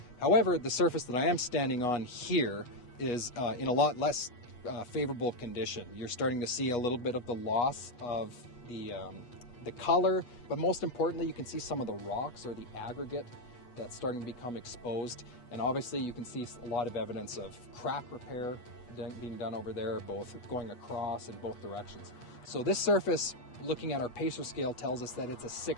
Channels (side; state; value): right; late; 8.3 ms